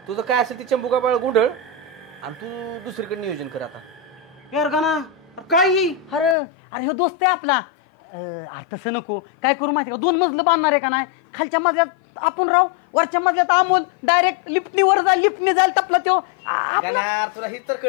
तुझं काय असेल ती चंबुका बाळ गुंडळ आणि तू दुसरीकडे नियोजन कर आता. यार गाना काय अरे अरे ह्यो दोस्त आहे आपला. अरे तसं नको, काय करू माहिती का, 2 मजलं बांधणार आहे का नाही, खालच्या मजल्यात आपण राहू, वरच्या मजल्यात अमोल डायरेक्ट लिफ्टनी वर जाईल, लिफ्टनी जाईल टपला त्यो. गाणार तुला ही तर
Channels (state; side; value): drops out; right; at 6.4 s